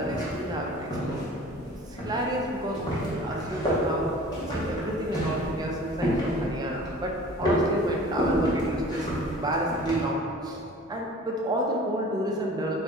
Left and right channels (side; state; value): both; normal; correlation 0.44